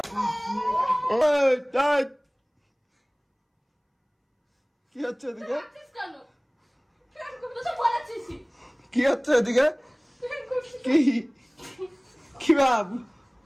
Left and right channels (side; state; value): both; identical; correlation 1.00